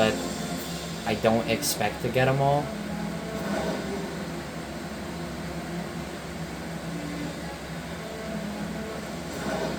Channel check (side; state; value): both; identical; correlation 1.00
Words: I don't expect to get them all.